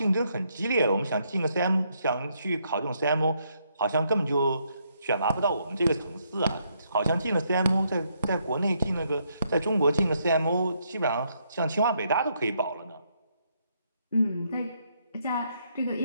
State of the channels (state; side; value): inverted; both; correlation -0.74